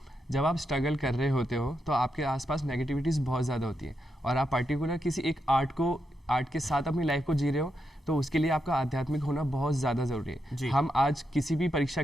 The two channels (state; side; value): normal; both; correlation 0.84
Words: जब आप स्ट्रगल कर रहे होते हो तो आपके आसपास नेगेटिविटीज़ बहुत ज़्यादा होती है, और आप पर्टिकुलर किसी एक आर्ट के साथ अपनी लाइफ को जी रहे हो, तो उसके लिए आपका आध्यात्मिक होना बहुत ज़्यादा ज़रूरी है। हम आज किसी भी परीक्षा